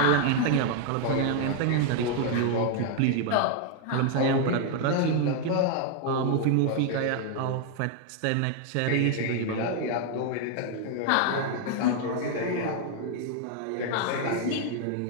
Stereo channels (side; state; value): both; different; correlation 0.00